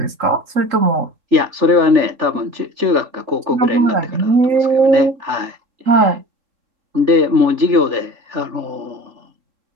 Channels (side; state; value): left; late; 3.4 ms